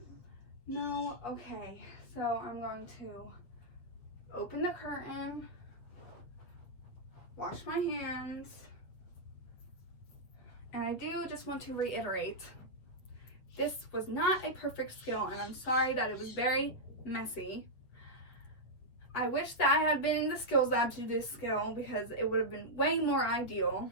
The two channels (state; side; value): late; right; 8.4 ms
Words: No? Okay. So I'm going to open the curtain, wash my hands, and I do just want to reiterate, this was not a perfect skill, and I'm sorry that it was very messy. I wish that I had been in the skills lab to do this skill because it would have been way more ideal.